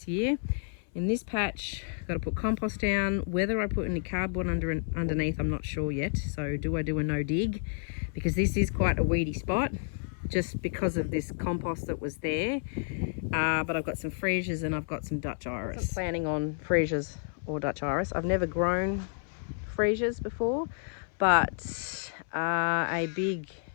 year. In this patch, I've got to put compost down. Whether I put any cardboard underneath, I'm not sure yet. So do I do a no dig? Because this is quite a weedy spot, just because of this compost that was there. But I've got some freesias and I've got some Dutch iris. I'm planning on freesias or Dutch iris. I've never grown freesias before, but a big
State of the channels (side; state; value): right; silent; 58 dB below the other